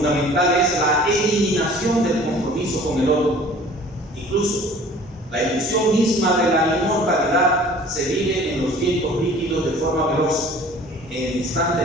es la eliminación del compromiso con el otro. Incluso la ilusión misma de la inmortalidad se vive en los tiempos líquidos de forma veloz, en el instante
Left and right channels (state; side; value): normal; both; correlation 0.48